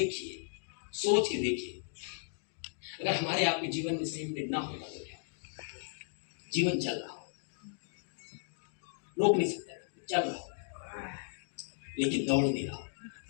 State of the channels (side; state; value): right; silent; digital silence